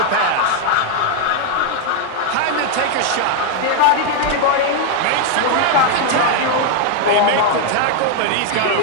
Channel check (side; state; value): both; different; correlation 0.00